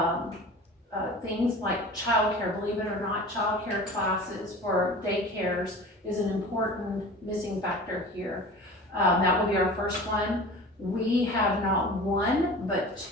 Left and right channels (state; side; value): normal; both; correlation 0.38